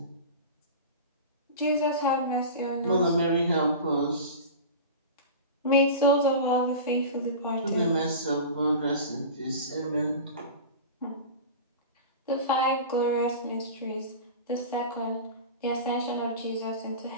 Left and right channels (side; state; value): both; inverted; correlation -0.31